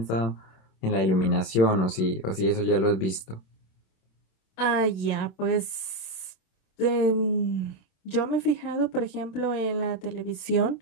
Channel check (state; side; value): late; right; 26 ms